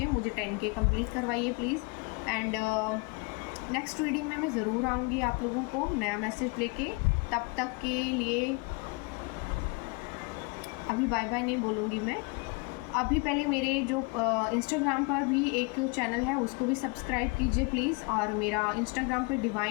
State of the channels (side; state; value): right; quieter; 29.4 dB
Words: मुझे 10K कंप्लीट करवाइए प्लीज़। एंड नेक्स्ट रीडिंग में मैं ज़रूर आऊँगी आप लोगों को नया मैसेज लेके। तब तक के लिए अभी बाय बाय नहीं बोलूँगी मैं, अभी पहले मेरे जो इंस्टाग्राम पर भी एक चैनल है उसको भी सब्सक्राइब कीजिए प्लीज़, और मेरा इंस्टाग्राम पर